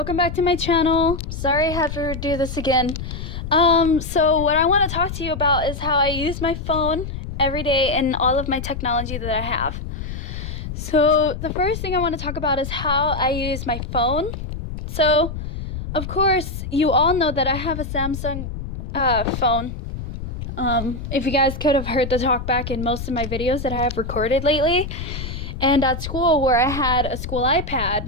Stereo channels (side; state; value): left; noise; rumble, 7 dB below the sound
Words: back to my channel. Sorry I have to do this again. So what I want to talk to you about is how I use my phone every day and all of my technology that I have. So the first thing I want to talk about is how I use my phone. So, of course, you all know that I have a Samsung phone. If you guys could have heard the talk back in most of my videos that I have recorded lately. And at school where I had a school